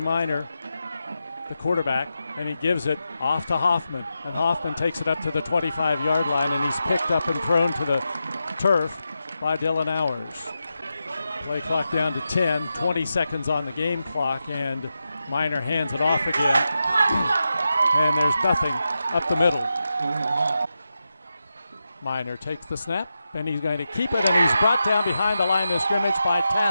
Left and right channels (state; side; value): inverted; both; correlation -0.89